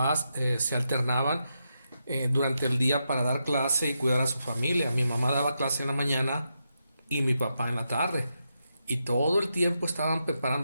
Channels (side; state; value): both; inverted; correlation -0.85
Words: se alternaban durante el día para dar clase y cuidar a su familia. Mi mamá daba clase en la mañana y mi papá en la tarde. Y todo el tiempo estaban